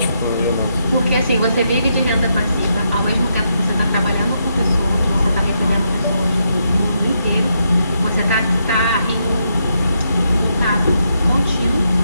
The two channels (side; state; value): both; inverted; correlation -0.80